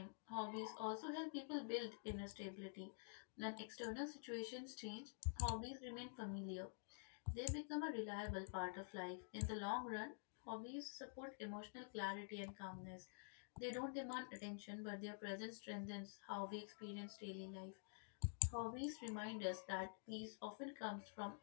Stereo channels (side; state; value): right; silent; digital silence